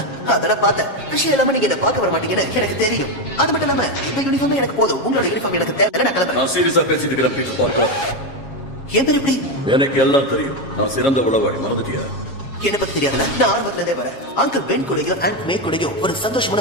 அதெல்லாம் பார்த்தேன். விஷயம் இல்லாம நீங்க என்ன பார்க்க வர மாட்டீங்கன்னு எனக்கு தெரியும். அது மட்டும் இல்லாம இந்த யூனிஃபார்ம் எனக்கு போதும். உங்களோட யூனிஃபார்ம் எனக்கு தேவை. நான் கிளம்புறேன். நான் சீரியஸா பேசிட்டு இருக்கிறேன் பீட்டர் பார்க்கர். என் பேர் எப்படி? எனக்கு எல்லாம் தெரியும். நான் சிறந்த உளவாளி. மறந்துட்டியா? என்ன பத்தி தெரியாதுல. நான் ஆரம்பத்துல இருந்தே வரேன். அங்கிள் பென் கூடயும் அண்ட் மே கூடயும் ஒரு சந்தோஷமான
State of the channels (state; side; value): late; right; 7.3 ms